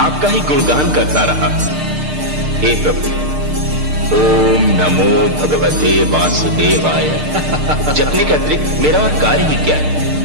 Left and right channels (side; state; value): left; late; 6.6 ms